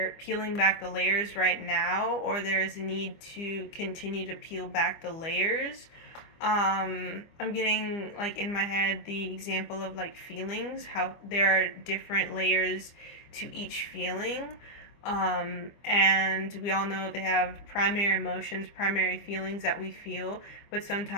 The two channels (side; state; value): right; late; 25 ms